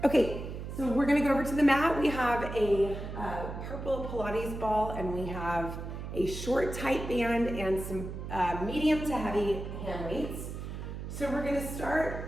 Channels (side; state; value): right; noise; hum, 7 dB below the sound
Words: Okay, so we're gonna go over to the mat. We have a purple Pilates ball, and we have a short tight band and some medium to heavy hand weights. So we're gonna